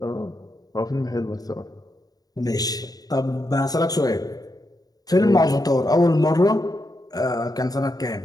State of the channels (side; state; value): right; late; 0.18 ms